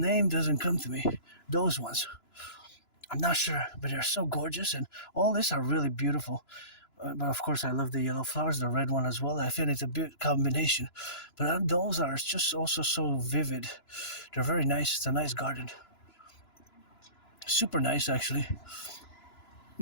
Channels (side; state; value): right; late; 2.9 ms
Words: doesn't come to me. Those ones. I'm not sure, but they're so gorgeous, and all these are really beautiful. But of course, I love the yellow flowers, the red one as well. I feel it's a good combination. But those are just also so vivid. They're very nice. It's a nice garden. Super nice, actually.